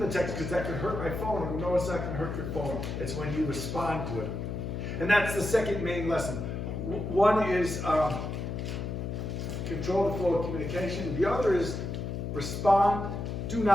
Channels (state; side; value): noise; left; hum, 4 dB below the sound